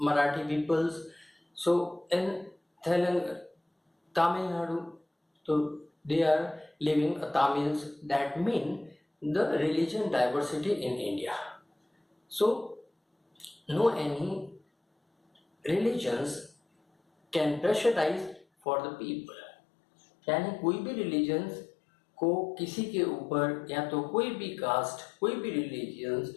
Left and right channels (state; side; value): drops out; right; at 18.4 s